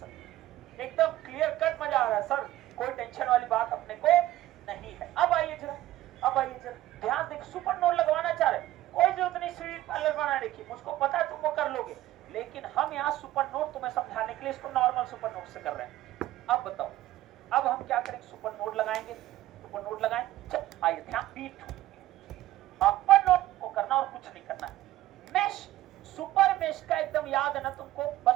एकदम क्लियर कट मजा आ रहा है सर, कोई टेंशन वाली बात अपने को नहीं है। अब आइए जरा, अब आइए जरा ध्यान देख, सुपर नोड लगवाना चाह रहे, कोई जरूरत नहीं सीरीज पैरेलल बनाने की, मुझको पता है तुम वो कर लोगे, लेकिन हम यहाँ सुपर नोड तुम्हें समझाने के लिए इसको नॉर्मल सुपर नोड से कर रहे हैं। अब बताओ, अब हम क्या करेंगे, सुपर नोड लगाएंगे, सुपर नोड लगाएं, चल आइए ध्यान, P2 अपर नोड को करना और कुछ नहीं करना है, मेश सुपर मेश का एकदम याद है ना तुमको,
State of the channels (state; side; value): quieter; left; 15.1 dB